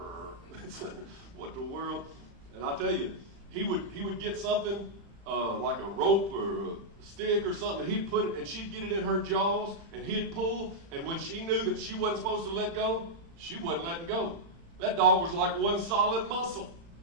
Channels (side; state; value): left; late; 35 ms